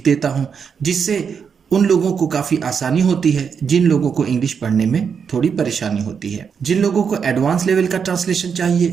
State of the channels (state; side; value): quieter; left; 6.6 dB